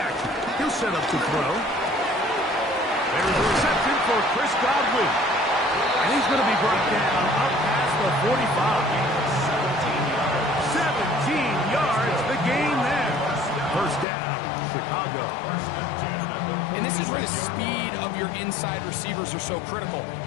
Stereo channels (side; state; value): right; drops out; at 14.1 s